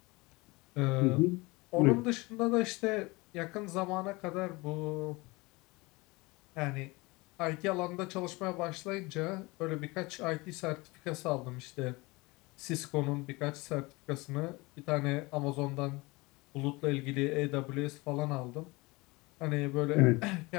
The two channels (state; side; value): quieter; right; 23.9 dB